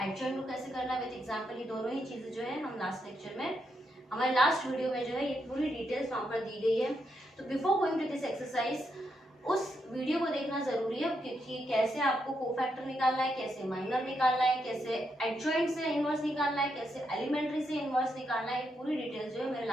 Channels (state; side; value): normal; both; correlation 0.81